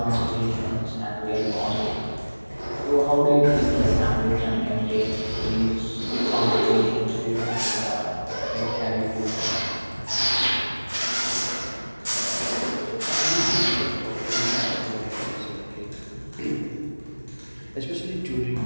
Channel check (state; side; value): inverted; both; correlation -1.00